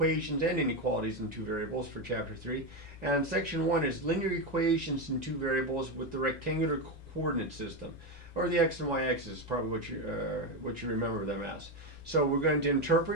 and inequalities in two variables for chapter 3. And section 1 is linear equations in two variables with the rectangular coordinate system, or the x and y axis is probably what you remember them as. So we're going to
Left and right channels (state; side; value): normal; both; correlation 0.11